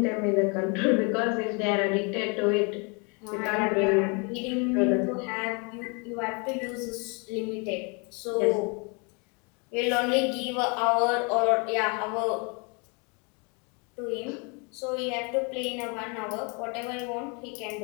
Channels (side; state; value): right; quieter; 33.3 dB